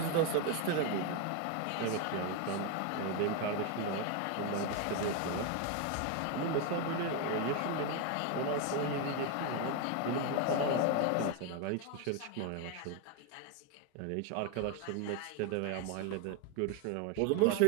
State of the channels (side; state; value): both; different; correlation 0.01